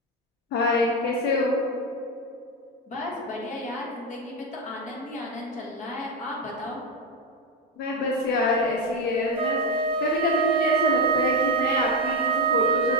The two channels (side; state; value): both; normal; correlation 0.09